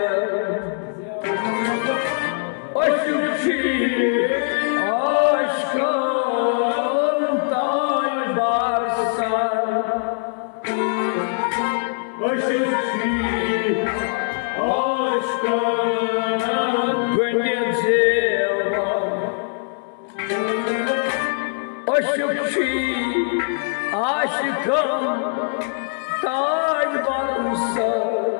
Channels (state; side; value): silent; right; digital silence